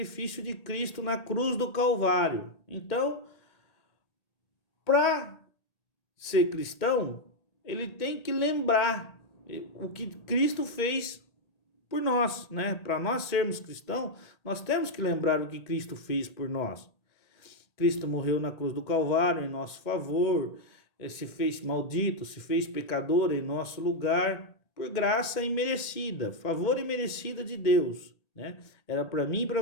de Cristo na cruz do Calvário. Então, para ser cristão, ele tem que lembrar o que Cristo fez por nós, né? Para nós sermos cristãos, nós temos que lembrar o que Cristo fez por nós. Cristo morreu na cruz do Calvário em nosso favor, se fez maldito, se fez pecador em nosso lugar, por graça imerecida, favor imerecida de Deus, né? Era para mim e para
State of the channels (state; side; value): late; right; 1.8 ms